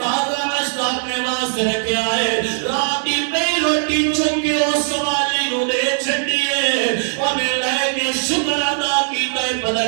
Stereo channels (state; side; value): silent; left; digital silence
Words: ناشتہ اپنے واسطے رکھیا ہے رات دی پئی روٹی چک کے اس سوالی نو دے چھڈی ہے انہیں لے کے شکر ادا کیتا ہے